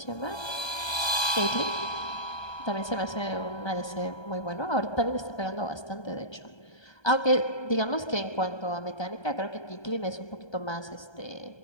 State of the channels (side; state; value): right; late; 1.3 ms